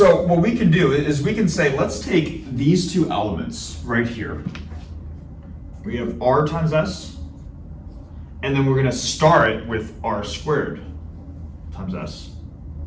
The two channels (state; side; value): identical; both; correlation 1.00